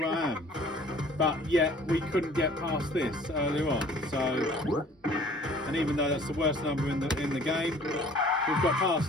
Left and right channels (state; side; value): normal; both; correlation 0.52